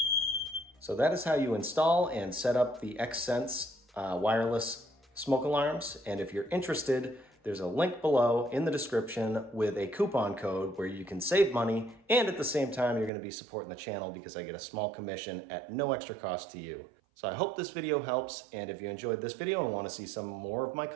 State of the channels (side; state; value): left; drops out; at 13.1 s